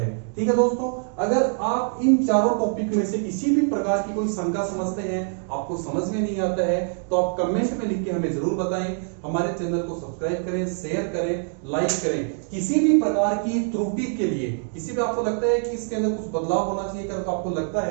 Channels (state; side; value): silent; left; 57 dB below the other